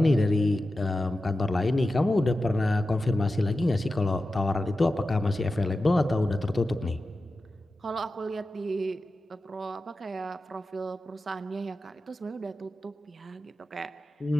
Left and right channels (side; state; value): both; normal; correlation 0.92